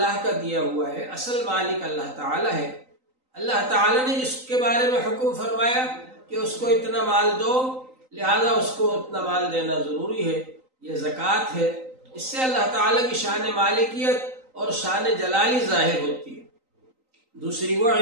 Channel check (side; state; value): left; late; 3.9 ms